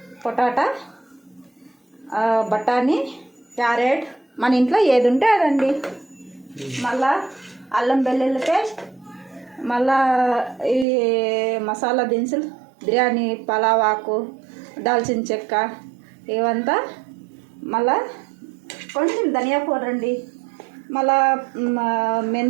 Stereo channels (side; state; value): left; drops out; at 10.9 s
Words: పొటాటా, బఠానీ, క్యారెట్, మన ఇంట్లో ఏది ఉంటే అదండి. మళ్ళా అల్లం వెల్లుల్లి పేస్ట్, మళ్ళా ఈ మసాలా దినుసులు, బిర్యానీ పలావ్ ఆకు, దాల్చిన చెక్క ఇవంతా, మళ్ళా కొంచెం ధనియా పౌడర్ అండి, మళ్ళా